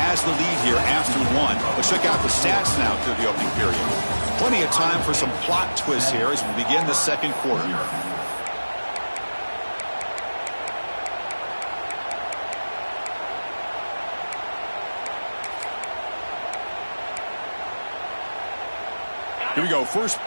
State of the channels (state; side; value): inverted; both; correlation -1.00